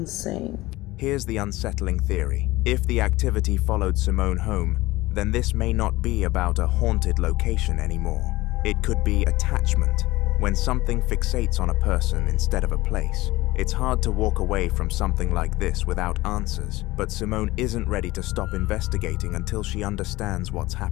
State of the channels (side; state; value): right; quieter; 19.2 dB